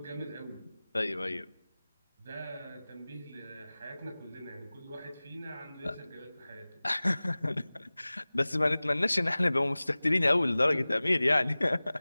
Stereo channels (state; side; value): inverted; both; correlation -0.99